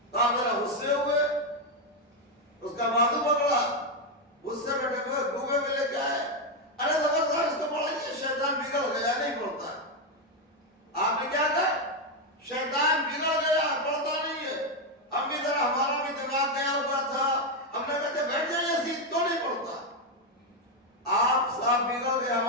تو آپ ذرا غصے ہوئے, اس کا بازو پکڑا, غصے میں ڈوبے میں لے کے آئے, ارے زبردست اس کو پڑھائیے, شیطان بگڑ گیا نہیں پڑھتا ہے. آپ نے کیا کہا؟ شیطان بگڑ گیا پڑھتا نہیں ہے. ہم بھی ذرا ہمارا بھی دماغ گیا ہوا تھا, ہم نے کہتے بیٹھ جائیے سیدھ تو نہیں پڑھتا. آپ صاحب بگڑ گئے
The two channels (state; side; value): normal; both; correlation 0.05